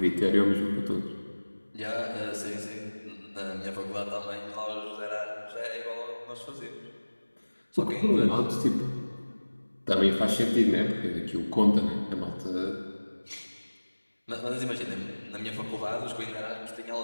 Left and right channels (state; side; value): inverted; both; correlation -1.00